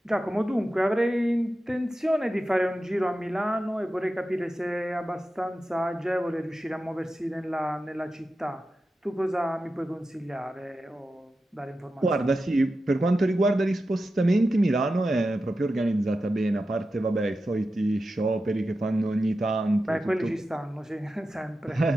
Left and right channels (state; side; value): normal; both; correlation 0.91